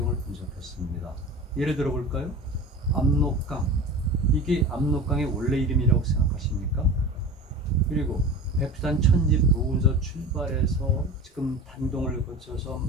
분석했습니다. 예를 들어 볼까요? 압록강. 이게 압록강의 원래 이름이라고 생각하십니까? 그리고 백두산 천지 부근에서 출발해서 지금 단동을 거쳐서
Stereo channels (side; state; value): both; normal; correlation 0.34